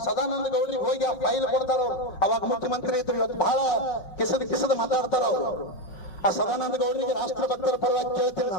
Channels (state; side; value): late; right; 5.6 ms